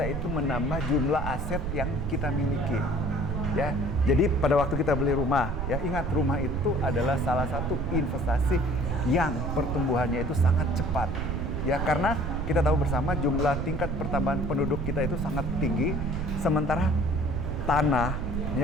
itu menambah jumlah aset yang kita miliki. Ya, jadi pada waktu kita beli rumah, ya ingat rumah itu adalah salah satu investasi yang pertumbuhannya itu sangat cepat. Ya, karena kita tahu bersama jumlah tingkat pertambahan penduduk kita itu sangat tinggi, sementara tanah,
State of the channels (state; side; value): noise; right; rumble, 3 dB below the sound